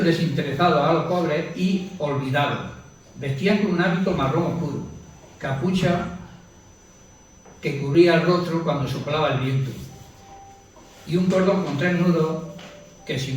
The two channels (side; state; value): both; identical; correlation 1.00